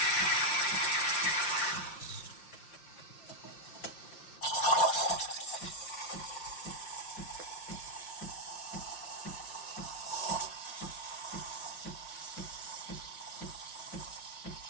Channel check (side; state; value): right; late; 5.6 ms